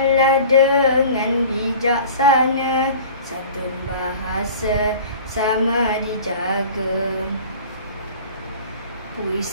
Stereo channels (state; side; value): inverted; both; correlation -0.42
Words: dengan bijaksana, santun bahasa sama dijaga.